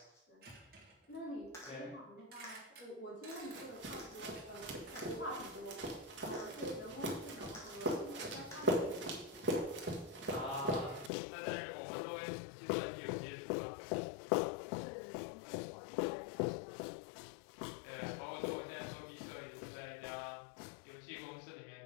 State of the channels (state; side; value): drops out; right; at 11.1 s